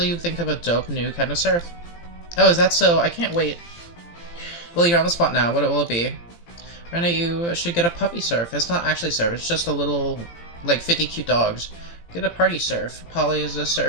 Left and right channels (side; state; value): right; late; 17 ms